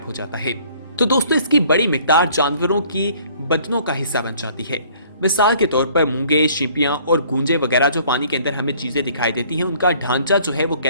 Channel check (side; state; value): both; inverted; correlation -0.57